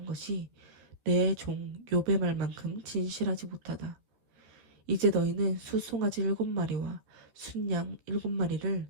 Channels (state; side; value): late; left; 14 ms